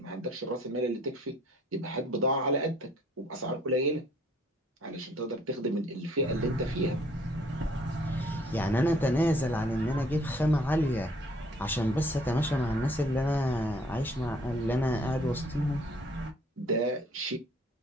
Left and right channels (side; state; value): both; normal; correlation 0.60